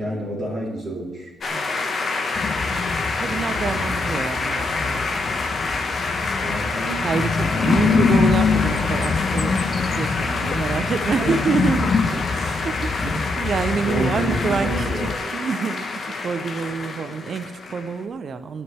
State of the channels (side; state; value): both; normal; correlation 0.78